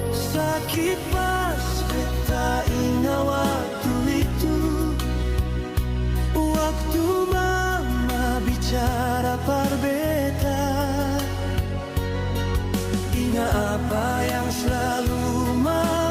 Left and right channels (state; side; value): identical; both; correlation 1.00